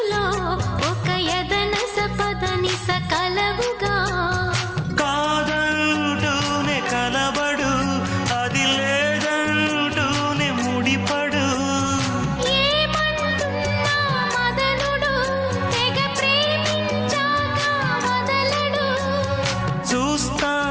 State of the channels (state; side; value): identical; both; correlation 1.00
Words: ఒక యదన సపదని సకలవుగా కాదంటూనే కలబడు అది లేదంటూనే ముడిపడు ఏమంటున్నా మదనుడు తెగ ప్రేమించాక వదలడు చూస్తా